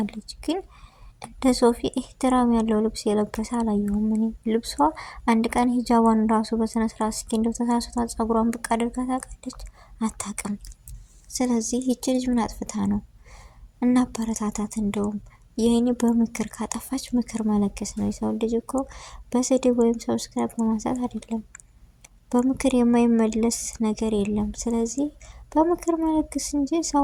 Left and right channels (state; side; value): identical; both; correlation 1.00